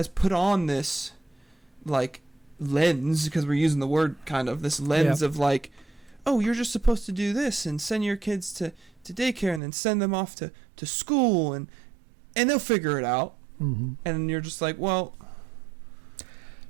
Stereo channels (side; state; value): left; drops out; at 9.6 s